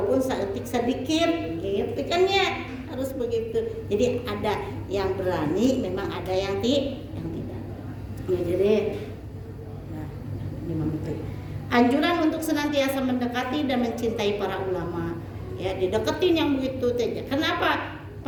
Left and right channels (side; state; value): both; identical; correlation 1.00